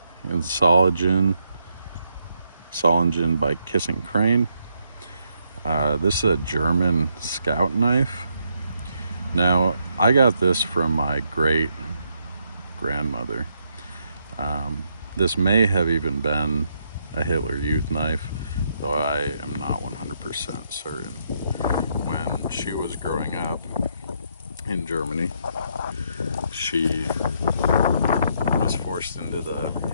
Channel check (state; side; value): inverted; both; correlation -0.76